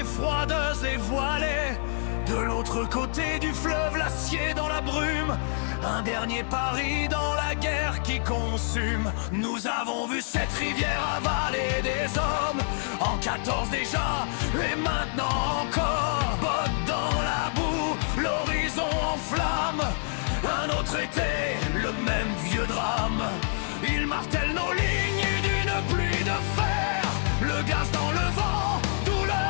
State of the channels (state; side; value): silent; right; digital silence